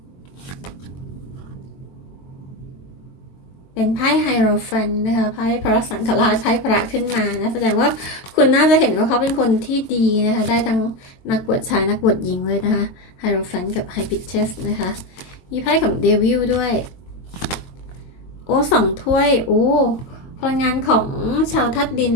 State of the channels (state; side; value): late; right; 22 ms